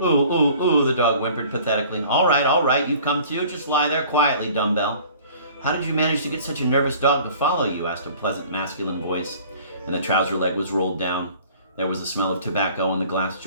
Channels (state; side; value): inverted; both; correlation -0.49